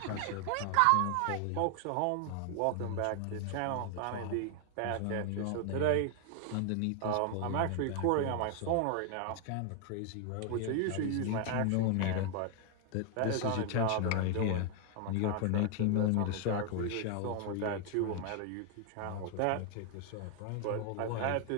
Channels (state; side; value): different; both; correlation 0.00